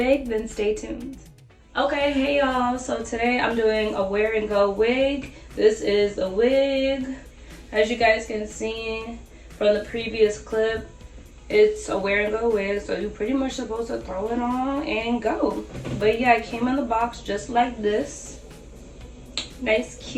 then stay tuned. Okay, hey y'all, so today I'm doing a wear and go wig. This is a wig. As you guys can see from the previous clip, it's a wear and go wig, so you're pretty much supposed to throw it on and go. But yeah, it came in the box just like this. Nice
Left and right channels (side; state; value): both; identical; correlation 1.00